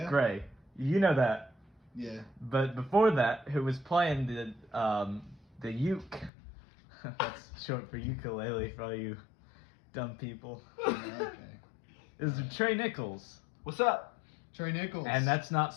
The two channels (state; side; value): drops out; right; at 6.3 s